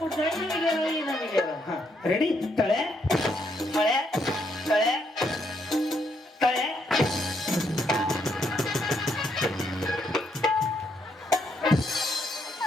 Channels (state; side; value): normal; both; correlation 0.74